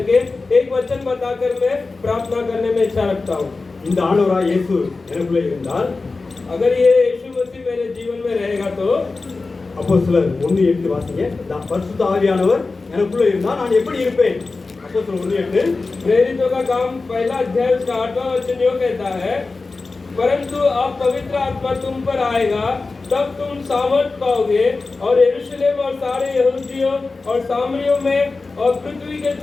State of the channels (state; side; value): quieter; right; 3.8 dB